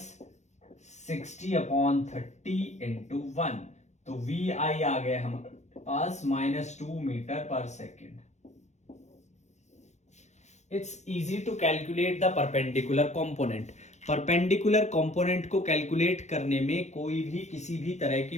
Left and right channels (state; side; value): late; right; 0.33 ms